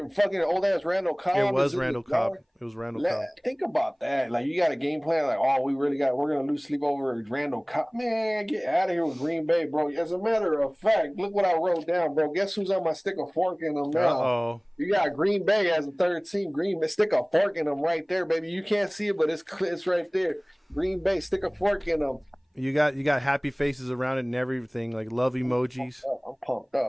fucking old ass Randall Cobb? It was Randall Cobb. It was Randall Cobb. Think about that. Like, you got a game plan. Like, oh, we're gonna lose sleep over Randall Cobb. Man, get out of here with Green Bay, bro. As a matter of fact, look what I wrote down, bro. Guess who's on my stick of fork in them now? Uh-oh. You got Green Bay as a third team. Green Bay, stick a fork in them right there, baby. You can't see it, but it's right there. Green Bay, stick a fork in them. You got happy faces around it and everything, like love emojis. I'm pumped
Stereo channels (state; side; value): identical; both; correlation 1.00